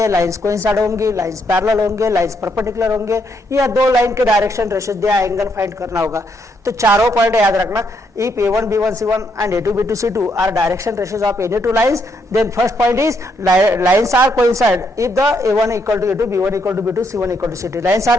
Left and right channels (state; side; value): normal; both; correlation 0.76